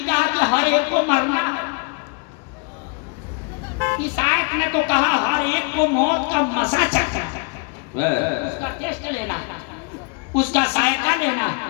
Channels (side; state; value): right; quieter; 32.8 dB